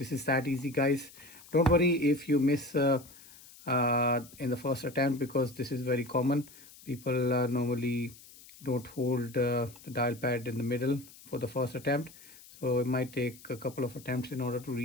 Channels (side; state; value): left; noise; hiss, 21 dB below the sound